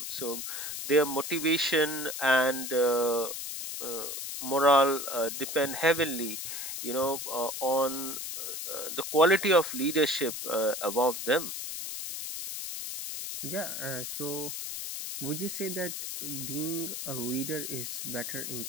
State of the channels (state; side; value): noise; left; hiss, 6 dB below the sound